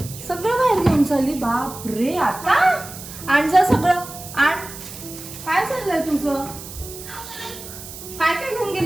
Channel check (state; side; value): noise; right; hiss, 13 dB below the sound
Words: सगळं बाहेर घेऊन चालली. बाप रे, आता आण जा सगळं, आण. काय चाललंय तुझं?